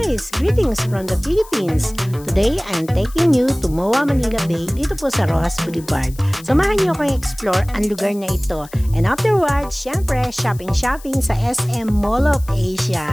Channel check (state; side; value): noise; left; hiss, 21 dB below the sound